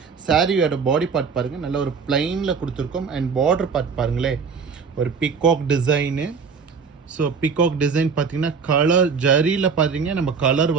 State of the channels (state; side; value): quieter; left; 5.6 dB